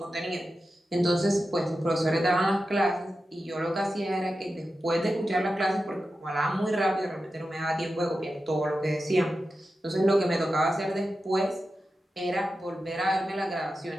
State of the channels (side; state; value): both; normal; correlation 0.91